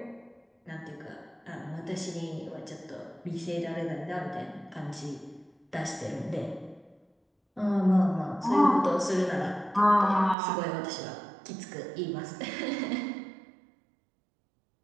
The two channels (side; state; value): left; drops out; at 10.4 s